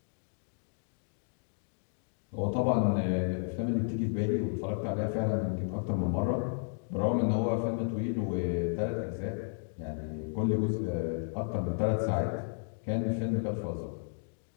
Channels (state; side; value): silent; right; digital silence